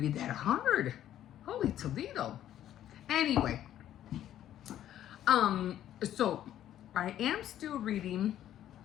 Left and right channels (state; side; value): quieter; right; 11.7 dB